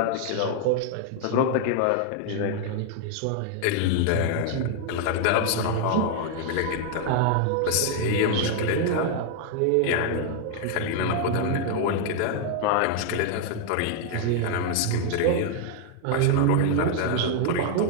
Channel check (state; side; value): different; both; correlation 0.00